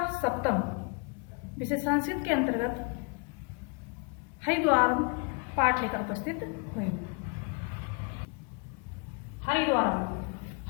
सप्तम विषय संस्कृत के अंतर्गत हरिद्वारम पाठ लेकर उपस्थित हुई हूँ।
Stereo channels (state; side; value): quieter; right; 34.9 dB